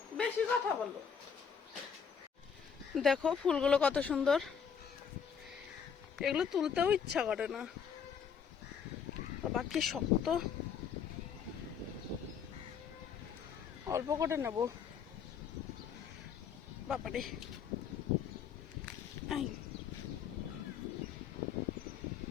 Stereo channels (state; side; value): quieter; right; 7.0 dB